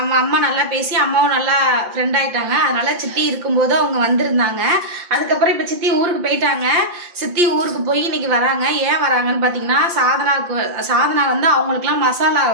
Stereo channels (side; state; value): left; late; 5.8 ms